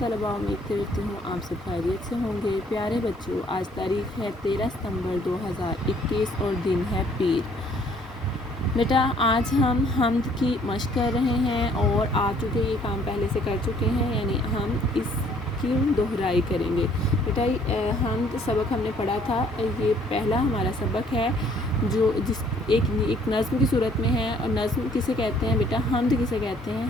उम्मीद करती हूँ आप सब खैरियत से होंगे। प्यारे बच्चों, आज तारीख़ है 13 सितंबर 2021 और दिन है पीर। बेटा आज हम हम्द की मश्क कर रहे हैं और आ चुके ये काम पहले से कर चुके हैं, यानी हम इसकी दोहराई करेंगे। बेटा हम्द सबक हमने पढ़ा था, ये पहला हमारा सबक है जो एक नज़्म की सूरत में है। और नज़्म किसे कहते हैं बेटा? हम्द किसे कहते हैं?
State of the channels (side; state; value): both; normal; correlation 0.61